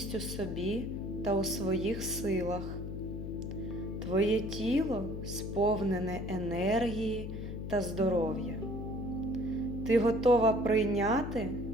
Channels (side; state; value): left; noise; hum, 6 dB below the sound